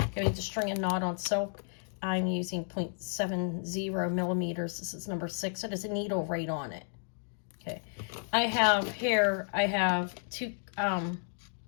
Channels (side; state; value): right; silent; 56 dB below the other